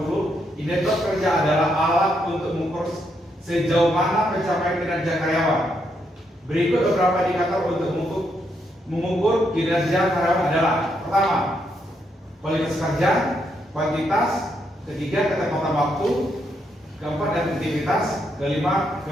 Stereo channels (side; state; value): both; normal; correlation 0.78